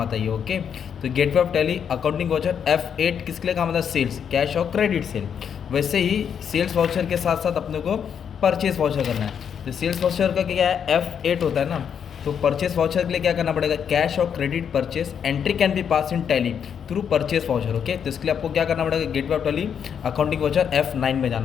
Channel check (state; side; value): quieter; right; 7.8 dB